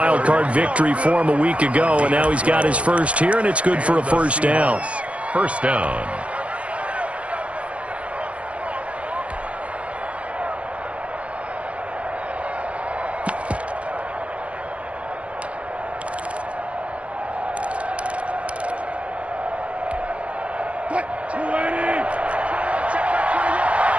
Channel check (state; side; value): late; left; 0.063 ms